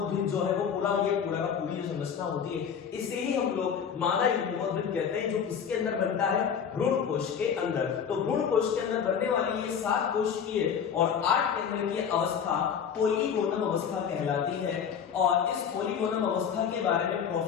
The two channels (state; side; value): quieter; right; 7.5 dB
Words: जो है वो पूरा का पूरी जो संरचना होती है इसे ही हम लोग मादा युग्मकोद्भिद कहते हैं, जो किसके अंदर बनता है भ्रूण कोश के अंदर। तो भ्रूण कोश के अंदर बनने वाली ये 7 कोशिकीय और 8 केंद्रीय अवस्था पोलीगोनम अवस्था कहलाती है और इस पोलीगोनम अवस्था के बारे में